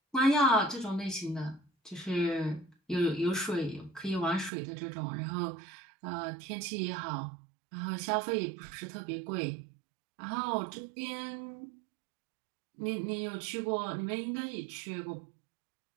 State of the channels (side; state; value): left; drops out; at 4.5 s